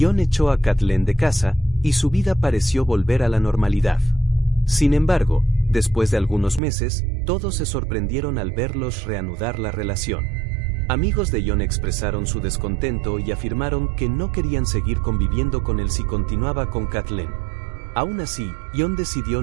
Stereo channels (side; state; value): left; drops out; at 6.6 s